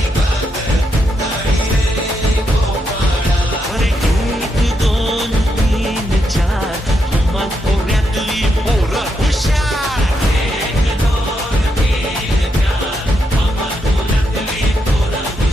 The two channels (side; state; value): both; normal; correlation 0.81